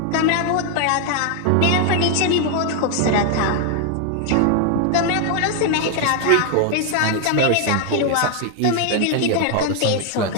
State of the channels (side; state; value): both; different; correlation 0.00